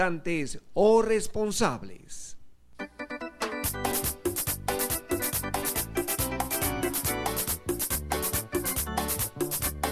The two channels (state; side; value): identical; both; correlation 1.00